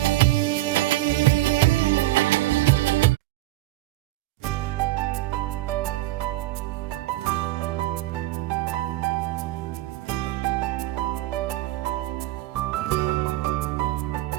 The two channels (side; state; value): left; quieter; 16.9 dB